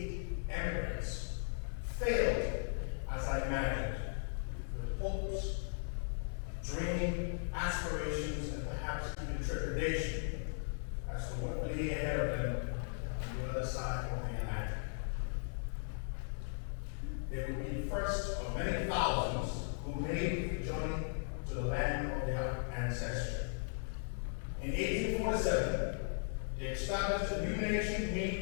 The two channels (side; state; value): right; silent; digital silence